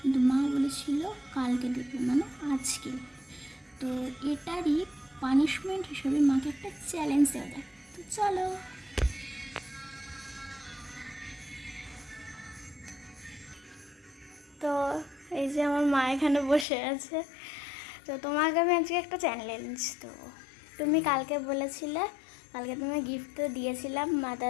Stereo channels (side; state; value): right; drops out; at 16.7 s